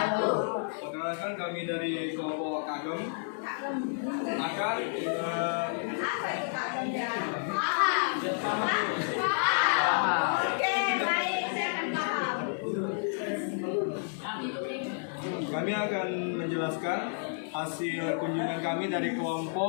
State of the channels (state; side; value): silent; right; 57 dB below the other